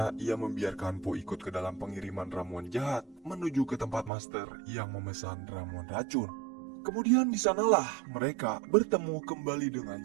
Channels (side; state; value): left; drops out; at 4.1 s